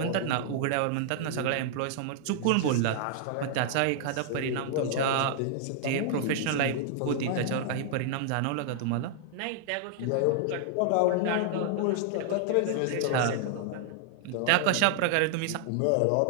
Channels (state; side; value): different; both; correlation -0.01